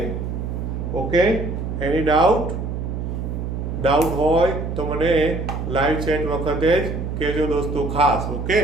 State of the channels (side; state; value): right; noise; hum, 4 dB below the sound